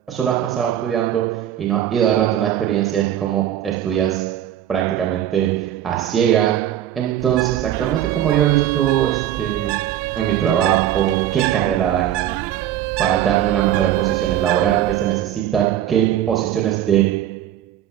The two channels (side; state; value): left; quieter; 11.4 dB